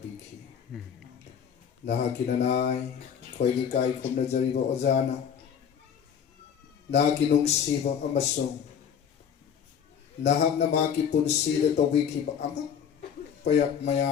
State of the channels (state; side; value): quieter; right; 7.9 dB